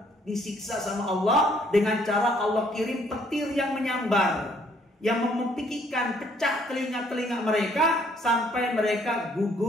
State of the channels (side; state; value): both; normal; correlation 0.64